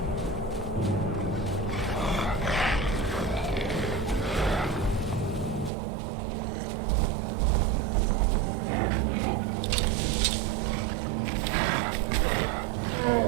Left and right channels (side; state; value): left; drops out; at 5.7 s